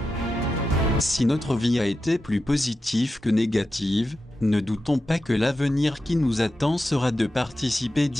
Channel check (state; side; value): normal; both; correlation 0.90